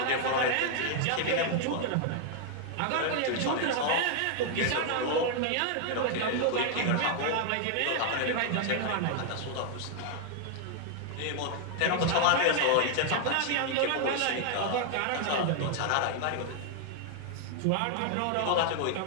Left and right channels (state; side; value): different; both; correlation 0.00